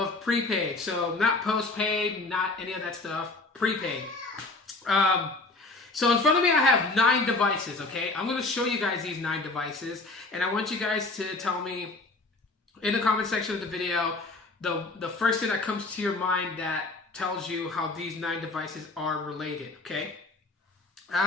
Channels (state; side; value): quieter; right; 3.3 dB